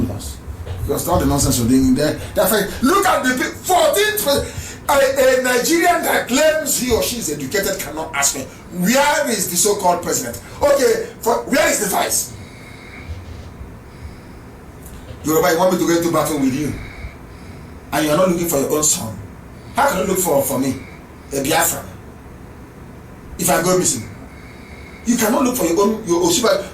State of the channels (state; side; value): identical; both; correlation 1.00